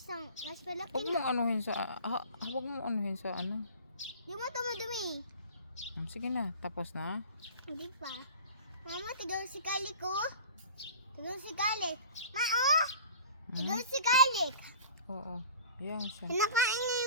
mas malaki Huwag na. mong anuhin sa... Huwag mong anuhin sa ano. Di mo tumadumi. Sige na. Tapos na. Hindi pa. Mama, tignan si Kalik ko. Tignan si Kalik. Tignan si Kalik. Oo. Yan siya. Kinakain niya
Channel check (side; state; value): both; inverted; correlation -0.41